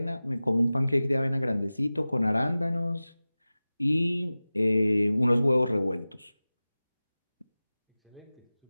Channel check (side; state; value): both; inverted; correlation -0.97